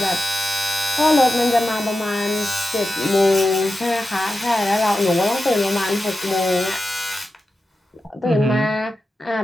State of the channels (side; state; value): both; normal; correlation 0.92